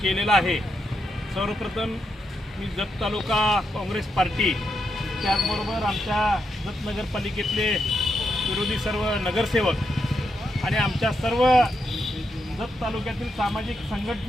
केलेलं आहे। सर्वप्रथम मी जत तालुका काँग्रेस पार्टी त्याचबरोबर आमच्या जत नगरपालिकेतले विरोधी सर्व नगरसेवक आणि आमच्या सर्व जत तालुक्यातील सामाजिक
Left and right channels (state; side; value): normal; both; correlation 0.83